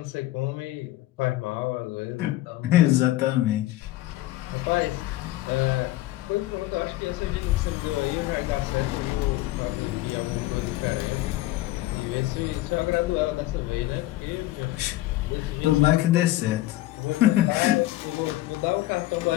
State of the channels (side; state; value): right; quieter; 16.2 dB